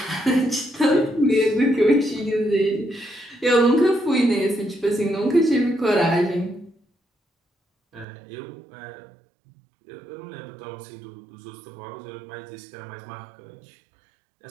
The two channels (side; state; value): left; drops out; at 8.1 s